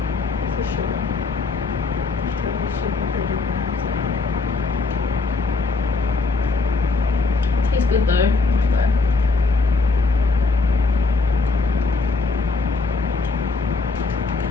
For sure. Tastes good though.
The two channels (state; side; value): quieter; right; 4.0 dB